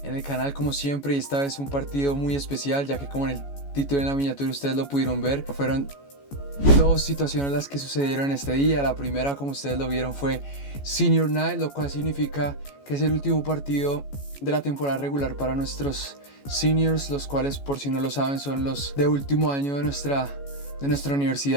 en el canal como siempre y esta vez un partido muy especial, ya que como en el título y en la miniatura ustedes lo pudieron ver, fueron dos situaciones las que sucedieron en este día. La primera, como ustedes lo vieron, fue Senior Night, lo cual significa que es el último partido de la temporada regular para nuestros seniors, los cuales, por si no lo saben, son los de último año de nuestra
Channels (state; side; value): late; right; 14 ms